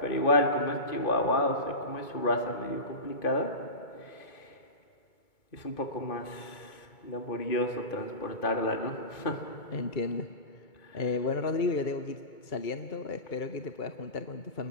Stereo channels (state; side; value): late; right; 2.2 ms